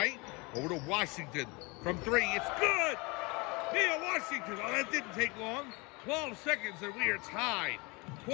over to Washington. From 3, it's good! Mia Washington, well, that didn't take long. 12 seconds and we are tied,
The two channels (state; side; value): quieter; right; 27.3 dB